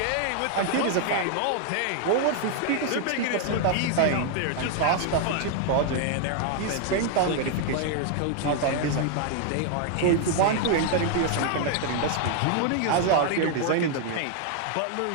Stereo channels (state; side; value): different; both; correlation 0.00